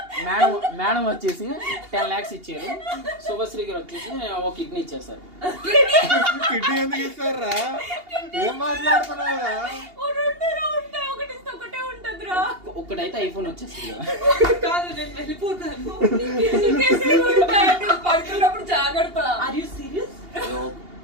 మేడం వచ్చేసి 10 lakhs ఇచ్చారు, శుభశ్రీ గారు వచ్చేసి ఒక కిడ్నీ ఇచ్చేస్తారు. కిడ్నీ ఎందుకు ఇస్తారా? ఏం మాట్లాడుతున్నావురా? ఒక్కటైతే ఐఫోన్ వచ్చేస్తుంది కదా. కాదు, నేను వెళ్ళిపోతాను. పడుతున్నప్పుడు జాగ్రత్త. Are you serious?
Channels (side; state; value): left; late; 2.8 ms